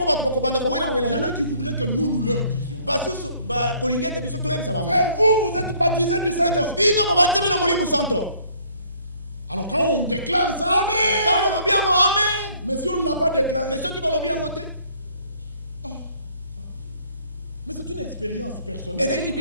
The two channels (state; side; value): inverted; both; correlation -0.60